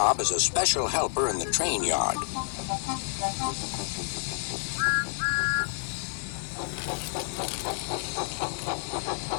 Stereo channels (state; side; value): silent; right; digital silence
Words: as a special helper in the train yard."